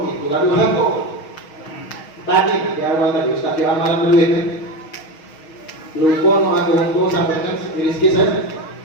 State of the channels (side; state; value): right; late; 6.4 ms